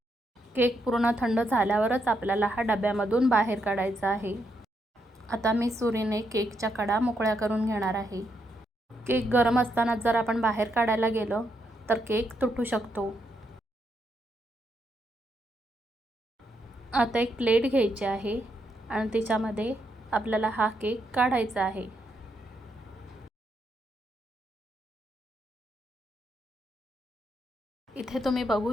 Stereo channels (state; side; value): normal; both; correlation 0.79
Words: केक पूर्ण थंड झाल्यावरच आपल्याला हा डब्यामधून बाहेर काढायचा आहे. आता मी सुरीने केकच्या कडा मोकळ्या करून घेणार आहे. केक गरम असताना जर आपण बाहेर काढायला गेलो तर केक तुटू शकतो. आता एक प्लेट घ्यायची आहे आणि त्याच्यामध्ये आपल्याला हा केक काढायचा आहे. इथे तुम्ही बघू